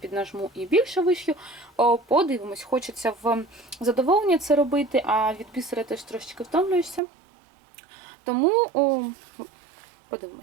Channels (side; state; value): left; drops out; at 7.0 s